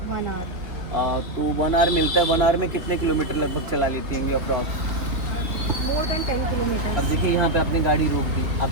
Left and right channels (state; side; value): late; left; 3.3 ms